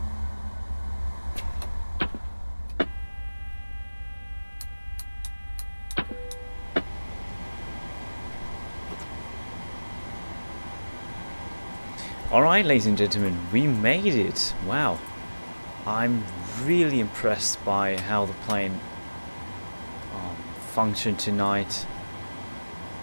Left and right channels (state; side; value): inverted; both; correlation -1.00